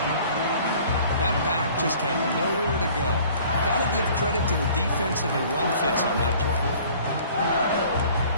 That back just had nowhere to go. Got to give credit to the defensive and run fits on that play.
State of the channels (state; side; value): inverted; both; correlation -0.51